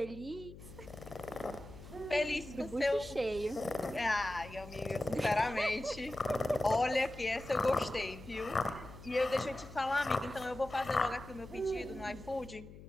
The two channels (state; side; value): noise; left; hum, 16 dB below the sound